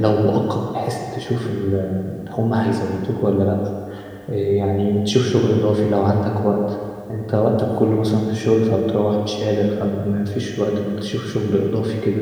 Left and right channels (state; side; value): identical; both; correlation 1.00